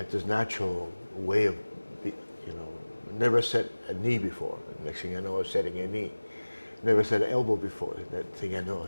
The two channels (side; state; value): both; inverted; correlation -1.00